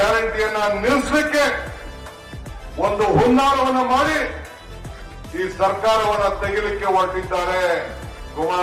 ನಿಲ್ಲಿಸಲಿಕ್ಕೆ ಒಂದು ಹುನ್ನಾರವನ್ನು ಮಾಡಿ ಈ ಸರ್ಕಾರವನ್ನ ತೆಗಿಲಿಕ್ಕೆ ಹೊರಟಿದ್ದಾರೆ.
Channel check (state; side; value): identical; both; correlation 1.00